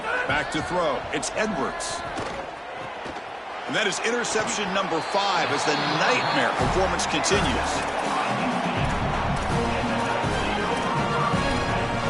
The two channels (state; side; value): identical; both; correlation 1.00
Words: Back to throw. It's Edwards. And that is interception number 5 as the nightmare performance continues.